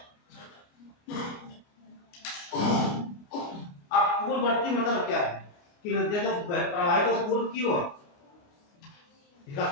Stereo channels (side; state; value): right; late; 29 ms